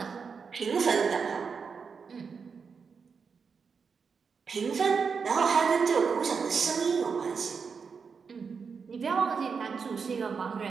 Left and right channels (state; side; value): quieter; left; 5.6 dB